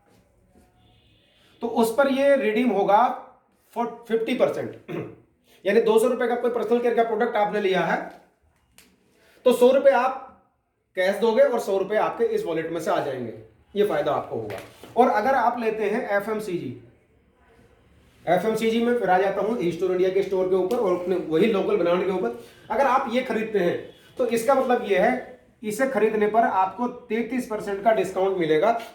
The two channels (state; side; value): identical; both; correlation 1.00